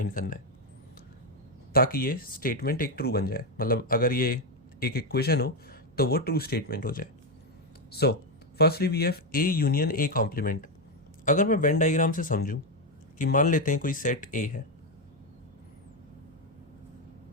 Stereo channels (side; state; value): right; noise; hum, 30 dB below the sound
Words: करना है ताकि ये स्टेटमेंट एक ट्रू बन जाए. मतलब अगर ये एक इक्वेशन हो तो वो ट्रू स्टेटमेंट हो जाए. So firstly we have A union A complement. अगर मैं वेन डायग्राम से समझूं कि मान लेते हैं कोई सेट ए है,